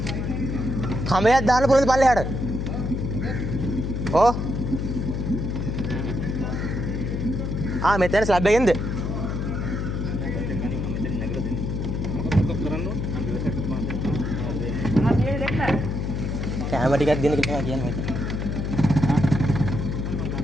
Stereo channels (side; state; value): left; noise; hum, 2 dB below the sound